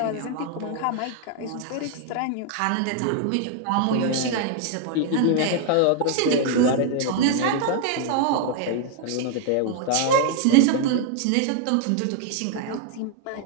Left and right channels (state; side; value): different; both; correlation 0.00